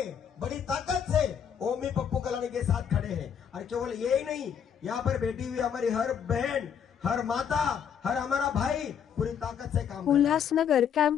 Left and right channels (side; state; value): right; quieter; 8.0 dB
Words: बड़ी ताकत से ओमी पप्पू कलानी के साथ खड़े हैं। और केवल यही नहीं, यहाँ पर बैठी हुई हमारी हर बहन, हर माता, हर हमारा भाई पूरी ताकत से काम। उल्हासनगर